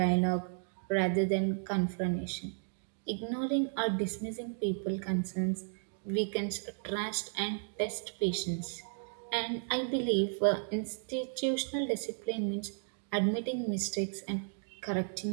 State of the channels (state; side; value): silent; left; digital silence